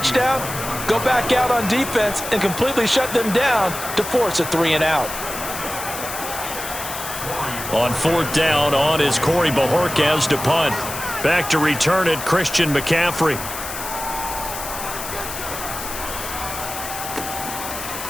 go back out on defense, and completely shut them down to force a 3-and-out. On 4th down, on is Corey Bojorquez to punt. Back to return it, Christian McCaffrey.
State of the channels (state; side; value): noise; left; hiss, 8 dB below the sound